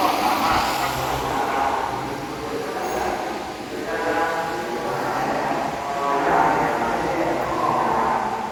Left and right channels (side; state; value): both; identical; correlation 1.00